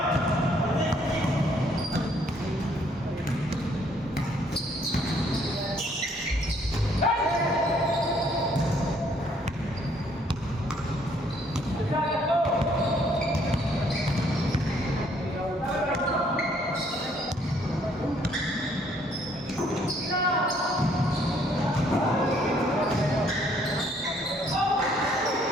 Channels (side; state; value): both; normal; correlation 0.65